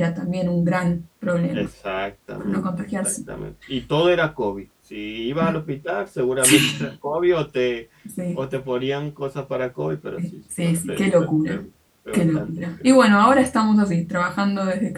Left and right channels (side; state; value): both; identical; correlation 1.00